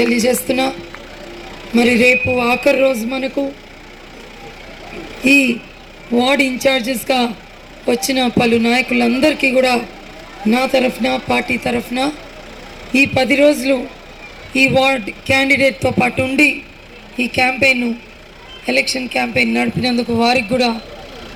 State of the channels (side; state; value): both; identical; correlation 1.00